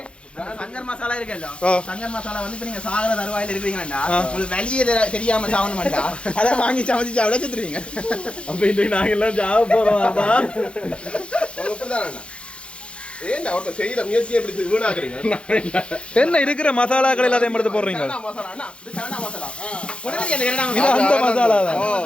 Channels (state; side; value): late; right; 0.058 ms